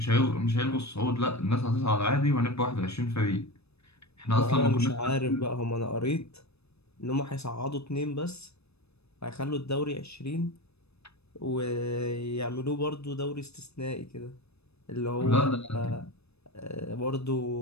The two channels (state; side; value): late; right; 0.79 ms